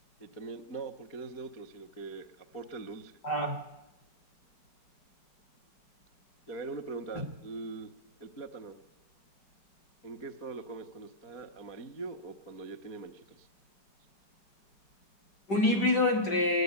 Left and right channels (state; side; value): late; right; 5.1 ms